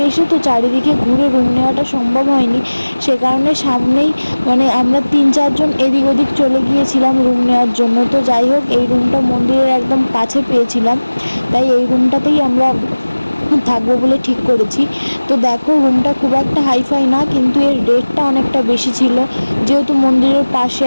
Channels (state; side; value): inverted; both; correlation -1.00